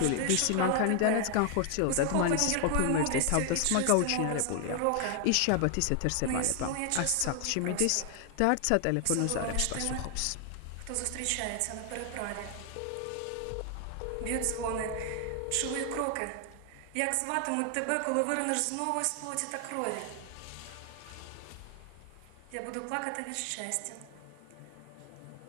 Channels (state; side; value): different; both; correlation 0.00